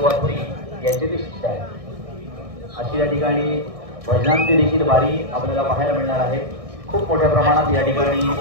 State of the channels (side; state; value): left; late; 1.6 ms